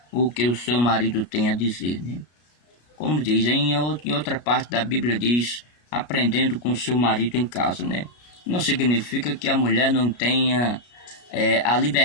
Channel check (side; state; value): right; late; 33 ms